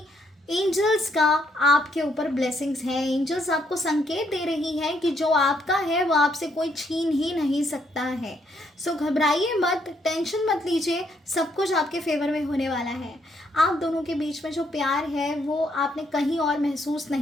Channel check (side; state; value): both; normal; correlation 0.72